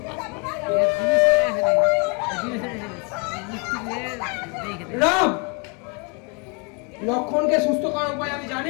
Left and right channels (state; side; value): quieter; right; 33.8 dB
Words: রাম, লক্ষণকে সুস্থ করার উপায় আমি